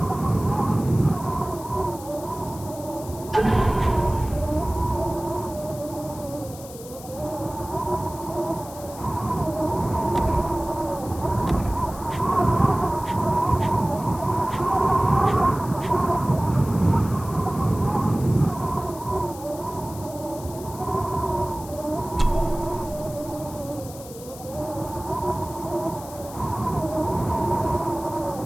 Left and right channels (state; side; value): noise; left; hiss, 17 dB below the sound